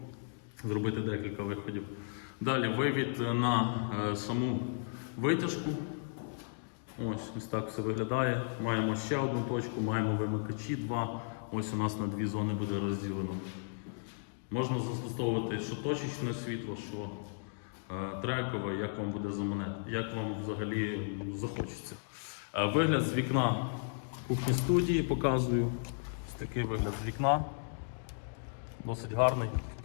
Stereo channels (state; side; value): silent; right; digital silence